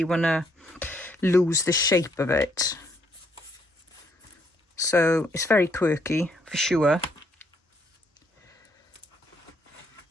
want to lose the shape of it. So it's very quirky for sure.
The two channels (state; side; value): normal; both; correlation 0.71